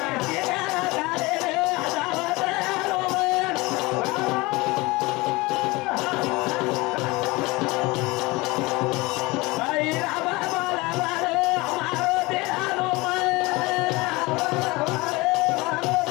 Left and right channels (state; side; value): quieter; right; 23.0 dB